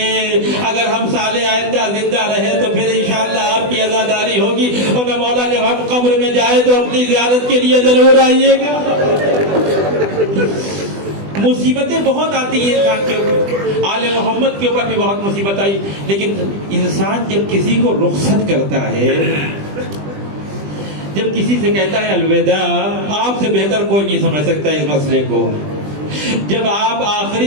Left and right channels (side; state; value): left; late; 20 ms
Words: اگر ہم سال آئندہ زندہ رہے تو پھر انشاءاللہ آپ کی عزاداری ہوگی. اور نہ مولا جب ہم قبر میں جائے تو اپنی زیارت کے لیے ضرور آئیے گا. مصیبتیں بہت آتی ہیں انسان کے اوپر, آل محمد کے اوپر بھی بہت مصیبت آئی. لیکن انسان جب کسی کو رخصت کرتا ہے, جب کسی سے کہتا ہے الوداع, آپ سے بہتر کوئی نہیں سمجھ سکتا اس مسئلے کو. جب آپ